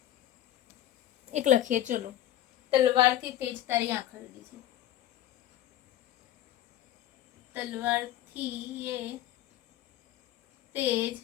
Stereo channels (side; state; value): right; quieter; 12.7 dB